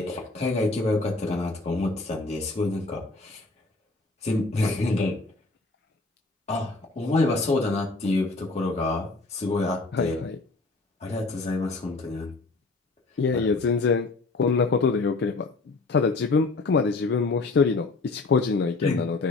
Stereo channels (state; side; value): quieter; right; 3.5 dB